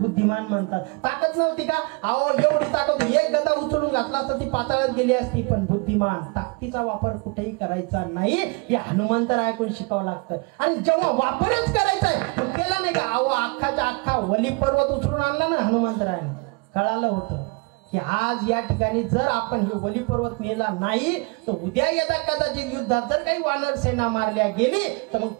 म्हणतात. ताकद नव्हती का. अहो एवढी ताकद, एक गदा उचलून घातला तर ती पाताळात गेली असती, पण बुद्धिमान. ताकदीचा वापर कुठेही करायचा नाही, हे हनुमंतराय ऐकून शिकावं लागतं. आणि जेव्हा वापरच करायचा आहे तो केला नाही का. अहो अख्खाच्या अख्खा वली पर्वत उचलून आणला ना हनुमंतरायाने. कळालं होतं की आज या ठिकाणी जर आपण हे वली पर्वत नेला नाही तर उद्या येता कदाचित युद्धात जर काही वानर सेना मारल्या गेली तर मग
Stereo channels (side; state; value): left; quieter; 29.9 dB